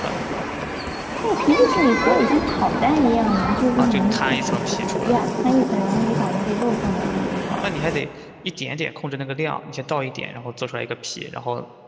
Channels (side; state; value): both; identical; correlation 1.00